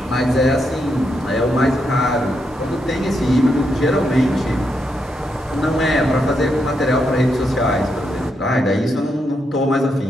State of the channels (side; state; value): both; normal; correlation 0.81